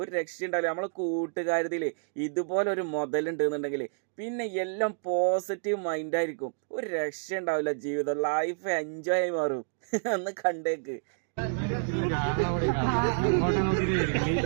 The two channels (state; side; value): silent; left; digital silence